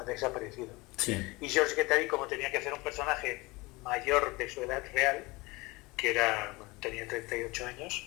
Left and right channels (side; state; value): right; quieter; 23.3 dB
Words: desaparecido. sí, Y George Guattari, como tenía que hacer un personaje mayor de su edad real, que era, bueno, tenía 38 años,